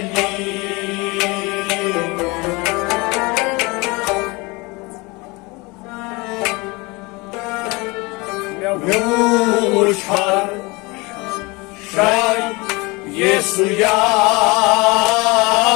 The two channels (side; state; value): right; quieter; 25.6 dB